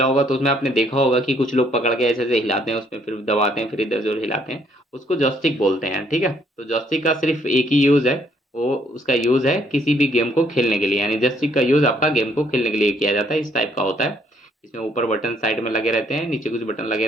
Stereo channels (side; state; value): both; normal; correlation 0.67